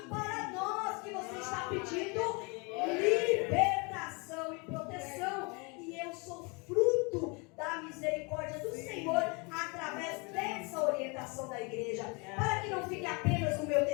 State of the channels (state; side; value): quieter; right; 30.4 dB